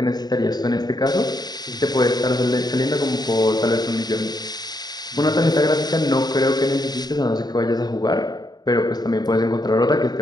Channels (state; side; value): late; right; 0.20 ms